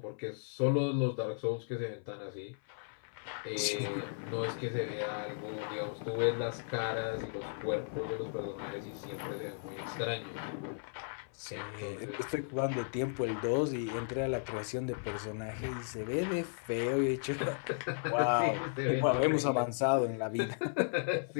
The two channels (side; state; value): right; silent; 54 dB below the other